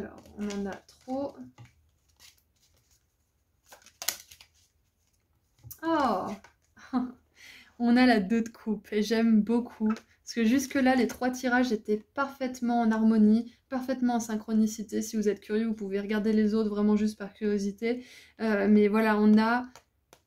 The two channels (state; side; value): identical; both; correlation 1.00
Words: on en a trop. Oh on a la 2 de coupe et j'aime beaucoup. Parce que jusque-là, les 3 tirages étaient parfaitement en harmonie, parfaitement en synchronicité. Si vous êtes curieux, vous pouvez regarder les autres vraiment juste par curiosité. Mais voilà, on a